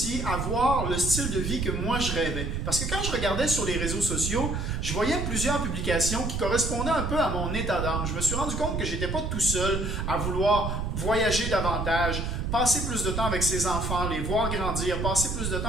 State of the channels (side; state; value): right; noise; rumble, 2 dB below the sound